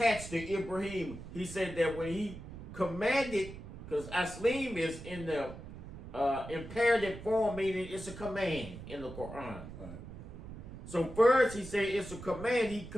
to Ibrahim. He said that when he commanded, because aslim is in the imperative form, meaning it's a command in the Quran. Right. So first he said it's a command. He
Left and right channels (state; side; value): noise; right; rumble, 12 dB below the sound